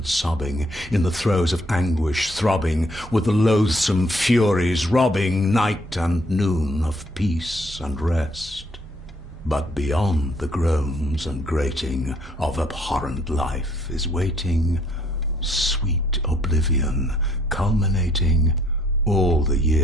sobbing, in the throes of anguish throbbing, with the loathsome furies robbing night and noon of peace and rest. But beyond the groans and grating of abhorrent life is waiting sweet oblivion, culminating all the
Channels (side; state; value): both; normal; correlation 0.65